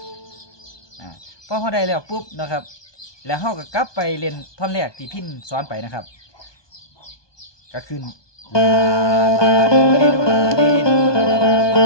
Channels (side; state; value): right; late; 1.2 ms